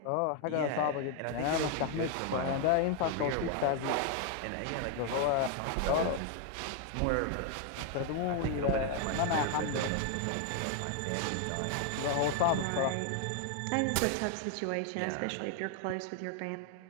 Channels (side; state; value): both; different; correlation 0.01